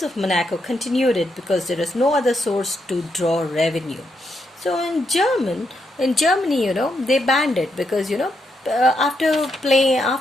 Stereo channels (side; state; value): both; normal; correlation 0.80